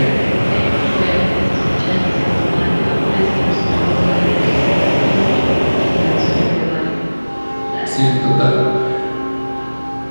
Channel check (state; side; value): inverted; both; correlation -1.00